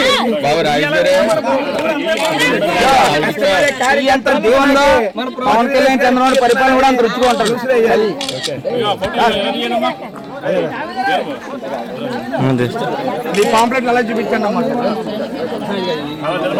పవన్ కళ్యాణ్ చంద్రబాబు పరిపాలన కూడా అంత రుచిగా ఉంటుంది. మీ పాంప్లెట్ అలా చూపించండి అమ్మా.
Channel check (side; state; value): both; identical; correlation 1.00